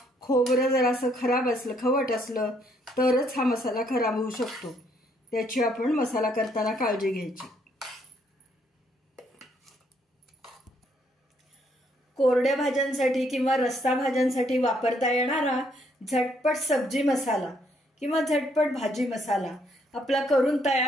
खोबरं जरासं खराब असलं, खवट असलं तरच हा मसाला खराब होऊ शकतो. त्याची आपण मसाला करताना काळजी घ्यायची. कोरड्या भाज्यांसाठी किंवा रस्सा भाज्यांसाठी वापरता येणारा झटपट सब्जी मसाला किंवा झटपट भाजी मसाला आपला करून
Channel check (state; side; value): normal; both; correlation 0.70